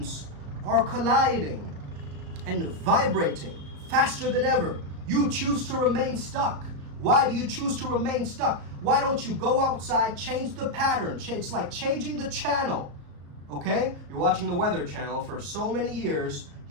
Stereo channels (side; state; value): left; late; 34 ms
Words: are colliding and vibrating faster than ever. You choose to remain stuck. Why do you choose to remain stuck? Why don't you go outside, change the pattern? It's like changing the channel, okay? You're watching the Weather Channel for so many years,